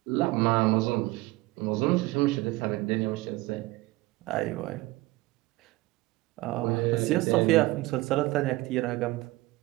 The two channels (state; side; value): quieter; left; 20.1 dB